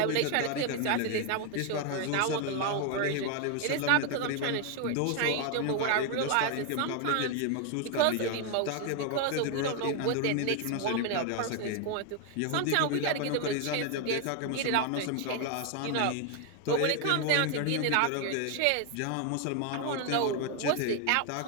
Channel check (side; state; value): both; different; correlation 0.01